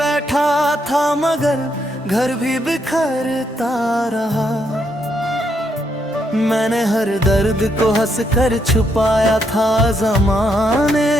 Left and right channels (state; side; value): normal; both; correlation 0.77